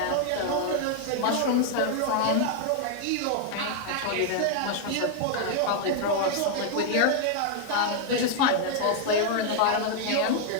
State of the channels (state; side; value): different; both; correlation 0.00